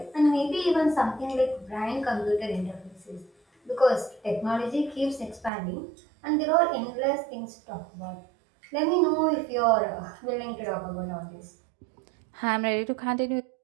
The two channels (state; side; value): drops out; left; at 5.5 s